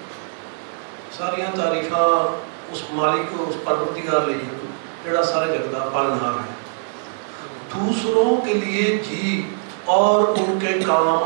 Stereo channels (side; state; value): left; silent; 63 dB below the other